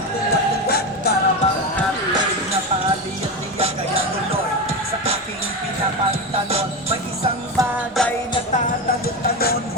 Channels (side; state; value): both; normal; correlation 0.18